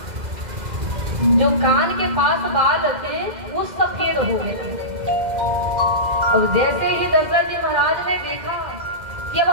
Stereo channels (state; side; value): late; left; 2.0 ms